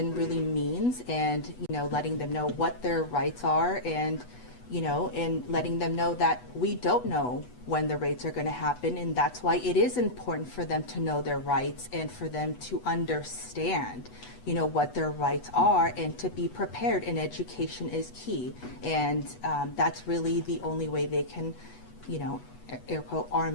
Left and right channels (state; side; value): late; right; 8.1 ms